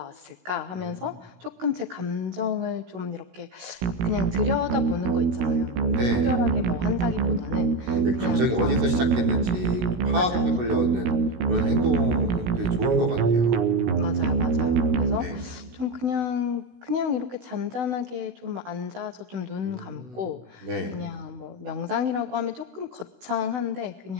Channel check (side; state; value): left; late; 16 ms